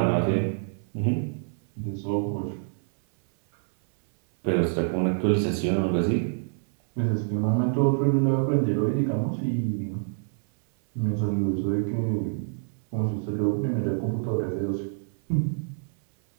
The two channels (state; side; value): silent; left; 60 dB below the other